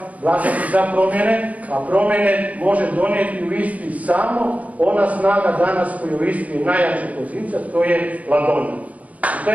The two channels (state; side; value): late; left; 0.071 ms